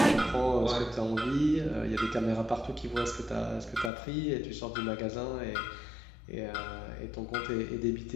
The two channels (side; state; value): right; drops out; at 3.9 s